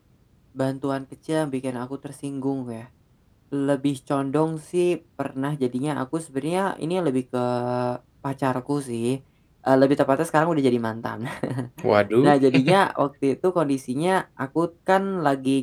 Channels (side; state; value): both; identical; correlation 1.00